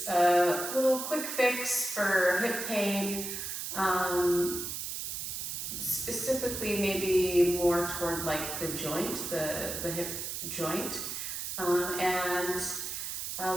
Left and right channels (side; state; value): right; noise; hiss, 5 dB below the sound